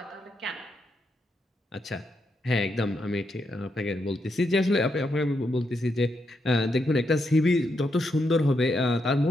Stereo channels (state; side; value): normal; both; correlation 0.81